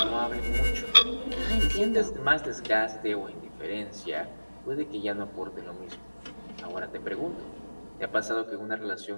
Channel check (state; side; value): inverted; both; correlation -1.00